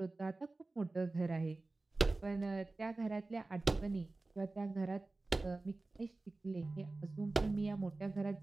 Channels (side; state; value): left; quieter; 3.2 dB